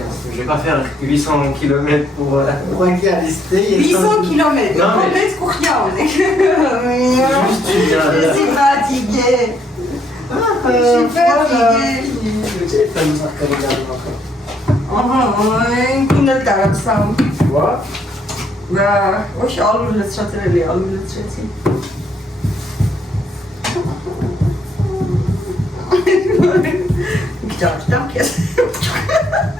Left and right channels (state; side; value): normal; both; correlation 0.70